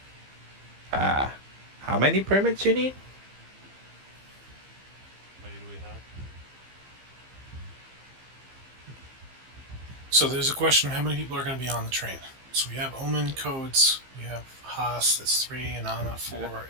Ah, how many permits you need? How many do we have? So there's a question: how many people are going to be on the train? So we have Omen codes. We have Haas. That's three, and Anna I got four.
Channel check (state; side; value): late; left; 15 ms